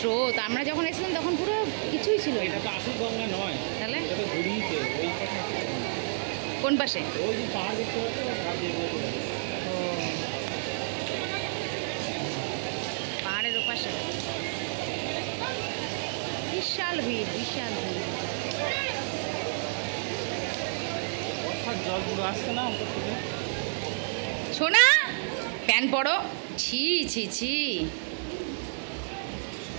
আমরা যখন এসেছিলাম তখন পুরো কিছুই ছিল না। তাহলে কোন পাশে? পাহাড়ের ওপাশে বিশাল ভিড়, বিশাল ভিড়। শোনা প্যান পড়ো, ছি ছি ছি।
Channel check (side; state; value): left; silent; digital silence